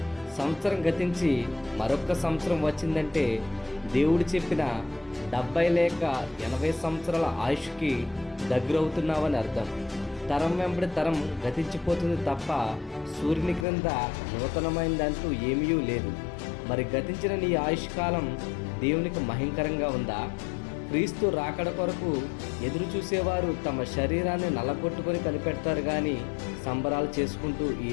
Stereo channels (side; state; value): right; drops out; at 13.7 s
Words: సంవత్సరం గతించి మరొక్క సంవత్సరం వచ్చిందంటే దేవుడు చెప్పిన 70 లేక 80 సంవత్సరాల ఆయుష్కి దగ్గరవుతున్నావని అర్థం. తరం వెంబడి తరం గతించిపోతుంది తప్ప సూర్యుని క్రింద నూతనమైనదంటూ ఏమీ లేదు. మరి గతించిన నీ ఆయుష్కాలం దేవునికి మహింకరంగా ఉందా? క్రీస్తు రాకడ కొరకు ఎదురు చూసేవారు తమ శరీరాన్ని నల్లగొట్టుకొని కనిపెడతారు కానీ సంబరాలు చేసుకుంటూ ఈ